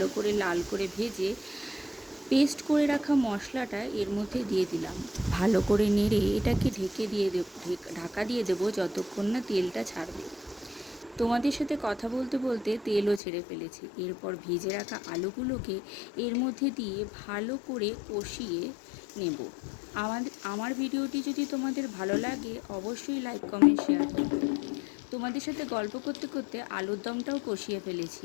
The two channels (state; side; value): drops out; right; at 13.2 s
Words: করে লাল করে ভেজে পেস্ট করে রাখা মশলাটা এর মধ্যে দিয়ে দিলাম। ভালো করে নেড়ে এটাকে ঢাকা দিয়ে দেবো যতক্ষণ না তেলটা ছাড়বে। তোমাদের সাথে কথা বলতে বলতে তেলও ছেড়ে ফেলেছি। এরপর ভেজে রাখা আলুগুলোকে এর মধ্যে দিয়ে ভালো করে কষিয়ে নেব। আমার ভিডিওটি যদি তোমাদের ভালো লাগে অবশ্যই লাইক কমেন্ট শেয়ার করবে। তোমাদের সাথে গল্প করতে করতে আলুর দমটাও কষিয়ে ফেলেছি।